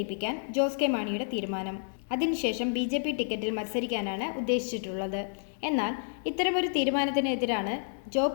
ജോസ് കെ മാണിയുടെ തീരുമാനം. അതിനുശേഷം ബി.ജെ.പി ടിക്കറ്റിൽ മത്സരിക്കാനാണ് ഉദ്ദേശിച്ചിട്ടുള്ളത്. എന്നാൽ ഇത്തരമൊരു തീരുമാനത്തിനെതിരാണ്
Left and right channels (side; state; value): right; silent; digital silence